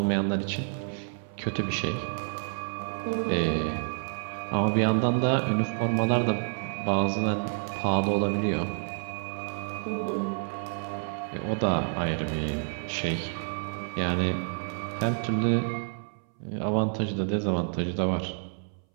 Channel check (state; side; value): silent; left; 59 dB below the other